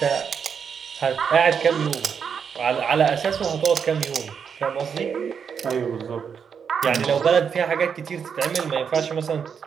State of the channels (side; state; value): left; quieter; 6.8 dB